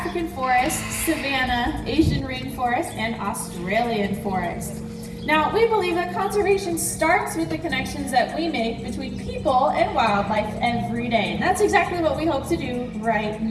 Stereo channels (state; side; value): identical; both; correlation 1.00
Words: forest, savanna, Asian rainforest, and Australian forest. Now, we believe that conservation starts with the connections that we make between people and wildlife every day. And that's exactly what we hope to do right